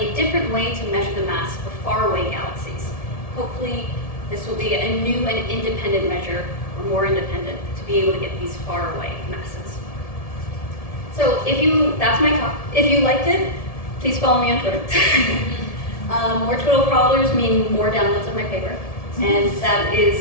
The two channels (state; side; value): late; right; 1.7 ms